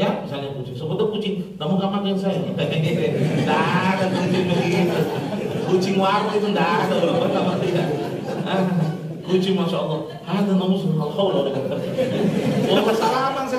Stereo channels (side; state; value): both; identical; correlation 1.00